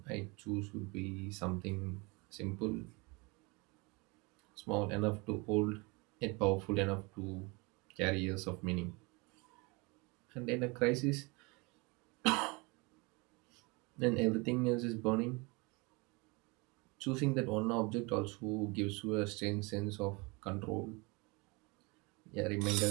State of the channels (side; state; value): left; quieter; 27.8 dB